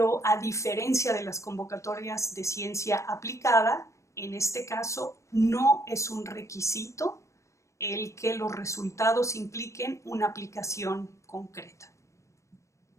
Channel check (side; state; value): right; late; 0.14 ms